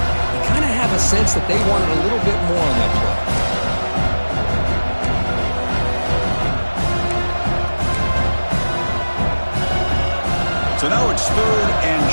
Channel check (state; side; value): inverted; both; correlation -1.00